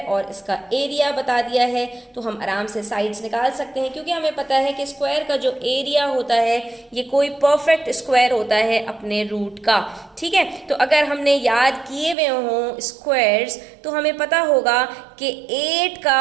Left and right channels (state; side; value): drops out; left; at 12.2 s